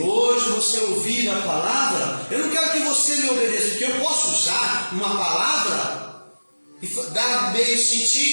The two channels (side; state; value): both; inverted; correlation -1.00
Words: você ouvir a palavra, eu não quero que você me obedeça, porque eu posso usar uma palavra e dar meio